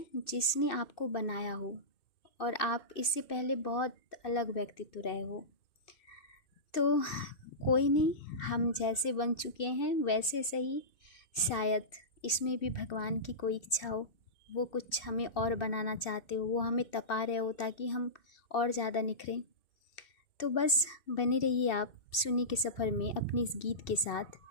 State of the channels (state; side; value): late; right; 2.6 ms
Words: जिसने आपको बनाया हो और आप इससे पहले बहुत अलग व्यक्तित्व रहे हो। तो कोई नहीं, हम जैसे बन चुके हैं वैसे सही। शायद इसमें भी भगवान की कोई इच्छा हो, वो कुछ हमें और बनाना चाहते हो, वो हमें तपा रहे हो ताकि हम और ज़्यादा निखरें। तो बस बने रहिए आप सुनने के सफ़र में अपने इस गीत के साथ।